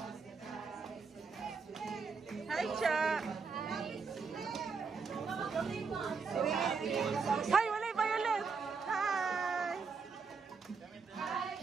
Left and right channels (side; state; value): left; quieter; 5.1 dB